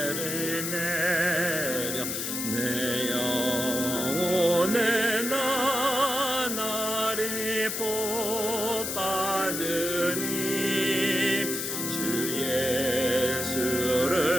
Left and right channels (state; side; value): noise; left; hiss, 3 dB below the sound